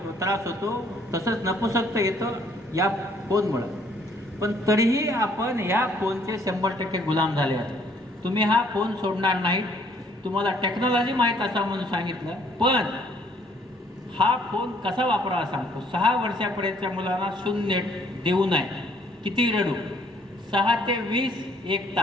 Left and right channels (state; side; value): normal; both; correlation 0.63